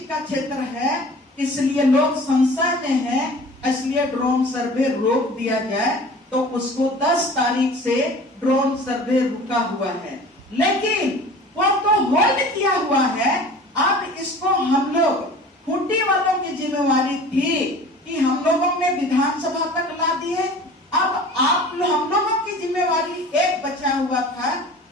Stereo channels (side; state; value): both; normal; correlation 0.43